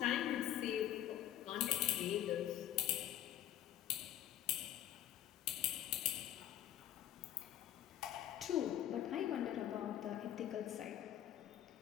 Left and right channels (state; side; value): quieter; right; 11.9 dB